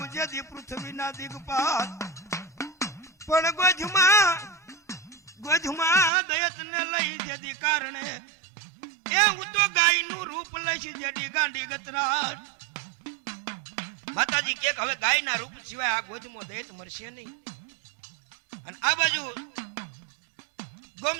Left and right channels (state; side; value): drops out; left; at 6.1 s